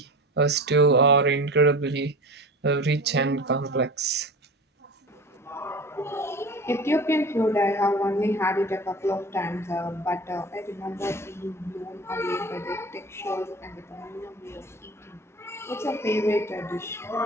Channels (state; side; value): normal; both; correlation 0.35